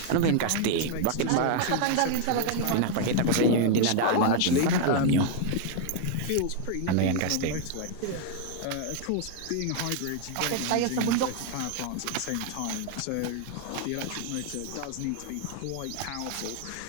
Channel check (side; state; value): both; different; correlation 0.00